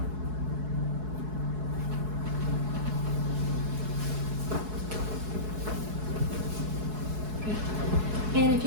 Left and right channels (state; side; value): late; left; 4.7 ms